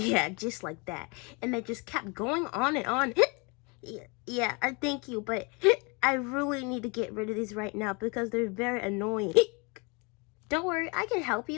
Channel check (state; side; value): quieter; right; 30.3 dB